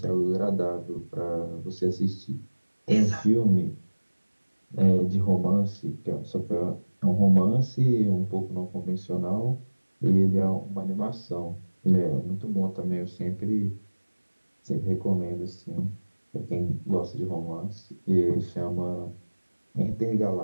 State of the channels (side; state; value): both; inverted; correlation -1.00